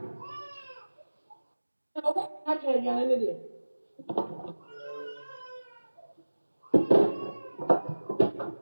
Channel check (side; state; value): both; inverted; correlation -1.00